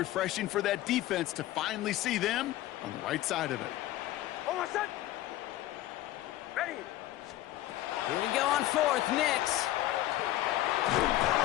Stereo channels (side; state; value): right; quieter; 14.9 dB